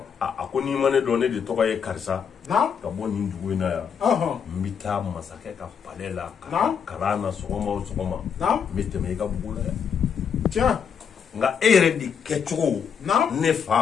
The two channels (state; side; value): quieter; right; 7.1 dB